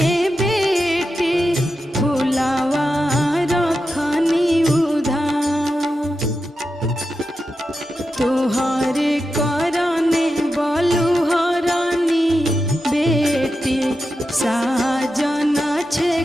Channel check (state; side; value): normal; both; correlation 0.89